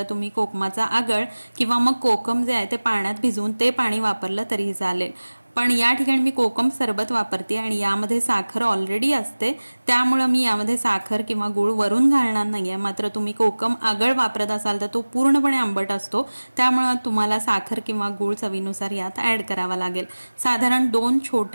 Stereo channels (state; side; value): inverted; both; correlation -1.00